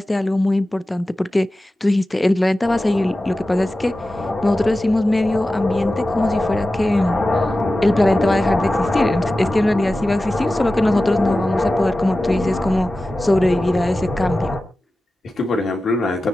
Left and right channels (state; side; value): normal; both; correlation 0.95